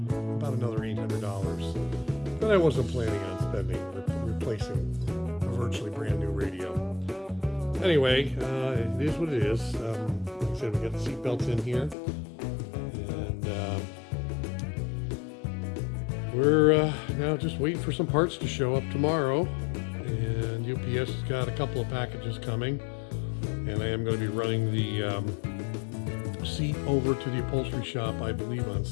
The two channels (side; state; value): right; drops out; at 12.0 s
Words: another $800. But I wasn't planning on spending replacing a virtually brand new radio. Anyway, it is what it is. Like I said, we got the seat belts in here. We're now just waiting for some parts to show up tomorrow, and UPS has got a couple of packages coming, and I am going to be running the seat over to the upholstery shop, I believe, on